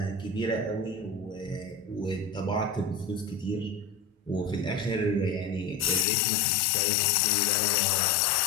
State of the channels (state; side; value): drops out; right; at 6.1 s